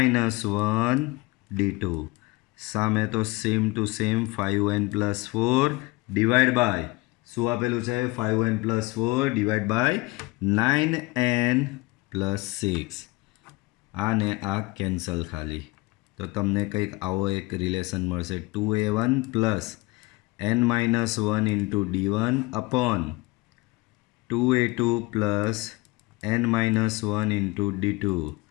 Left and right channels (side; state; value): right; quieter; 22.9 dB